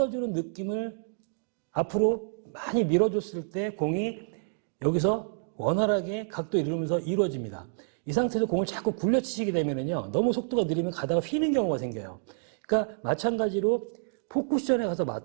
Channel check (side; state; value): left; silent; digital silence